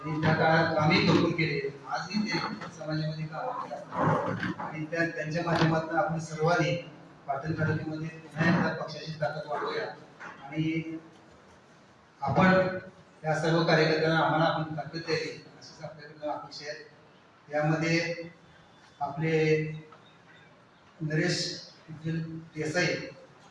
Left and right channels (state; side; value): identical; both; correlation 1.00